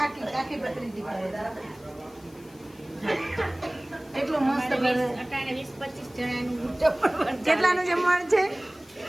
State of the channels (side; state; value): left; noise; hiss, 27 dB below the sound